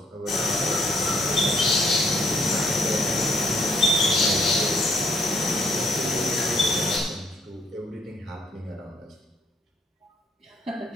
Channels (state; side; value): normal; both; correlation 0.68